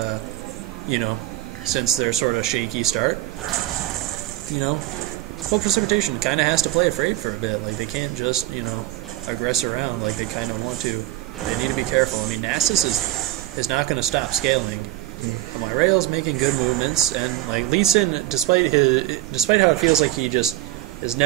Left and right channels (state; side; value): quieter; left; 15.6 dB